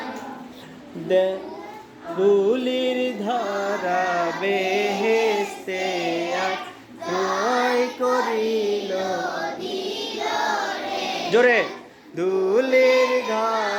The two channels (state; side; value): identical; both; correlation 1.00